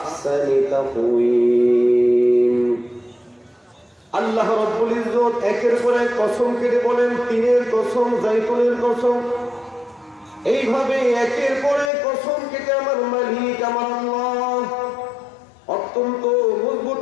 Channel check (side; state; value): right; drops out; at 11.9 s